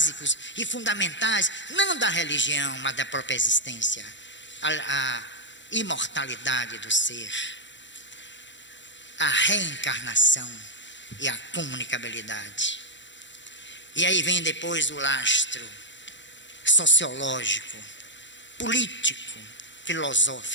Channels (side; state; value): right; late; 0.54 ms